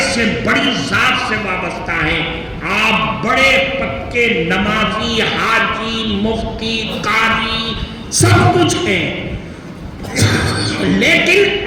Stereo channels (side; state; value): both; identical; correlation 1.00